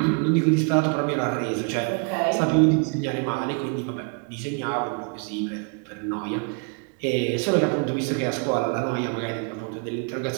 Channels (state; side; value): quieter; left; 38.3 dB